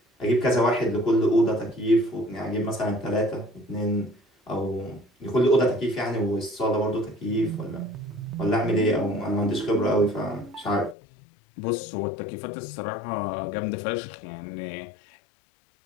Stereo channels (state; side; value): drops out; right; at 11.0 s